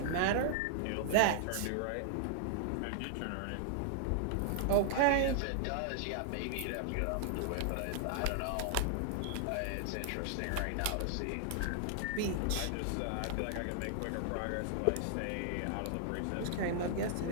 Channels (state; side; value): different; both; correlation -0.01